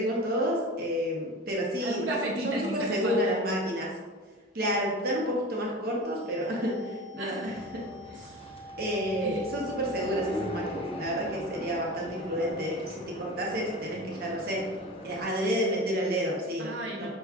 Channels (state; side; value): normal; both; correlation 0.33